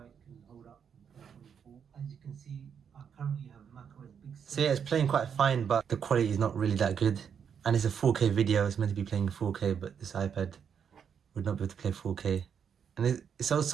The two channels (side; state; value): left; quieter; 7.4 dB